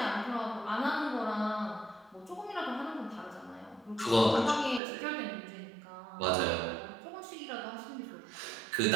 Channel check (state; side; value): drops out; left; at 4.8 s